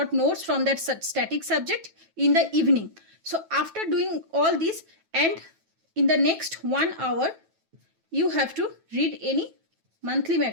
notes from that static subject in the evening. So after doing all this, and in the next 1 hour, you have to read any monthly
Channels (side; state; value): left; late; 9.2 ms